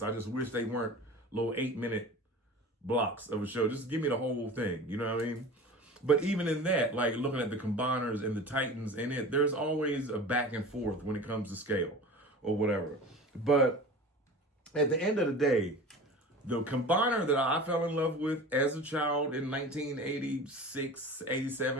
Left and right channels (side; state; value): both; normal; correlation 0.36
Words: I just wish they weren't little 8-minute blocks of a show. Just give me the whole thing. You know what I mean? But even in that, like looking at the Combiners and the Titans in it, there's always a back and forth when it comes to scale or whatever. But at the end of the day, the Combiner that I fell in love with as a child in 1986,